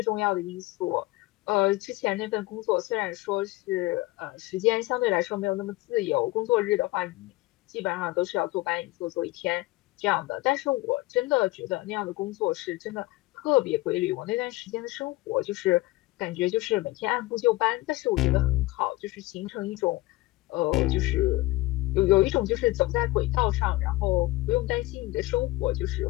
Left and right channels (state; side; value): quieter; right; 19.5 dB